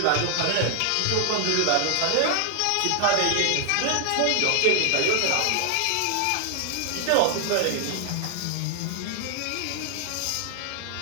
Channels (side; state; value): both; different; correlation 0.00